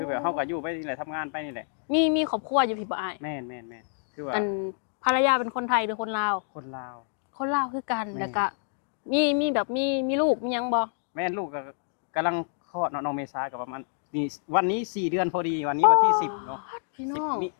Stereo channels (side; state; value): right; silent; digital silence